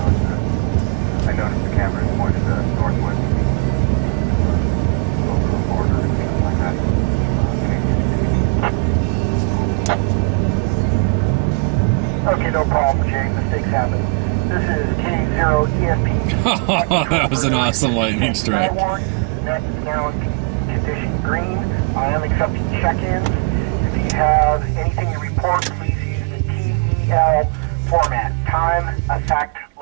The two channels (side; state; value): left; quieter; 32.1 dB